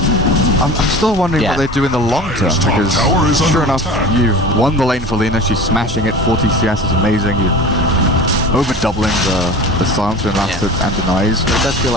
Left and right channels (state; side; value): normal; both; correlation 0.36